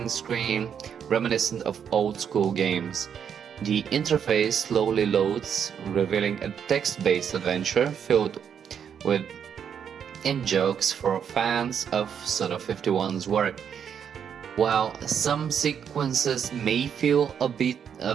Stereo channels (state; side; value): quieter; left; 7.9 dB